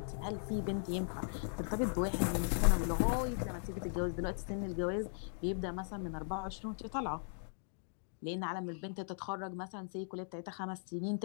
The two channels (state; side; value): silent; right; digital silence